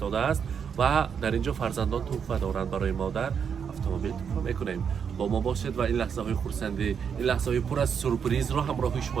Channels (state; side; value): quieter; left; 7.1 dB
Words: است و در اینجا فرزندان تحفه دارند برای مادر. اتومبیل تحفه میکنیم. با ما باشید و این لحظه های خرسندی، این لحظه های پر از سورپرایز رو همراه